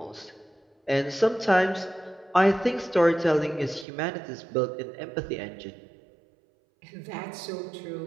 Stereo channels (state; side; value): drops out; left; at 3.9 s